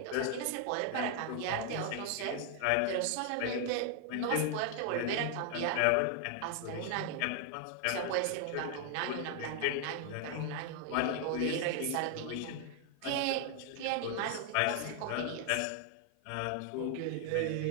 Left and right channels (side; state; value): both; different; correlation 0.00